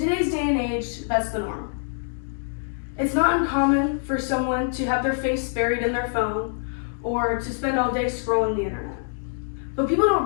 day and age, that's the norm. It's not uncommon for someone to have their face buried in their phone, or to spend all day scrolling the internet. But people don't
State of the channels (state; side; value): silent; right; digital silence